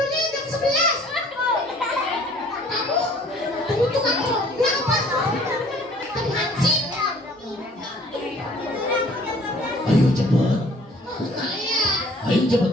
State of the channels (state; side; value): normal; both; correlation 0.55